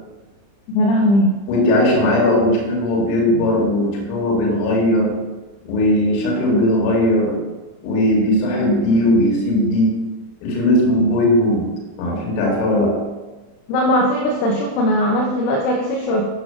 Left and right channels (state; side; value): late; right; 35 ms